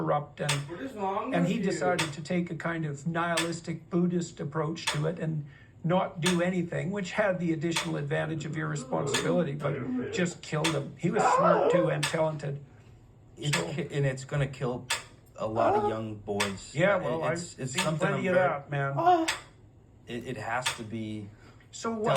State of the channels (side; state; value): both; identical; correlation 1.00